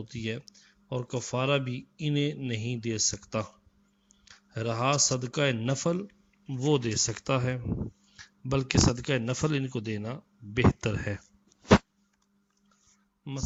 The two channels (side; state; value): both; identical; correlation 1.00